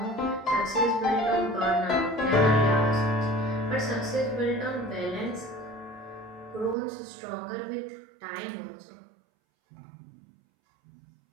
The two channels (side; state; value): left; drops out; at 6.8 s